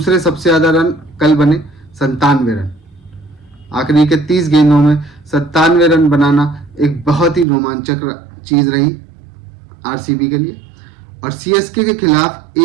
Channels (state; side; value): drops out; left; at 7.5 s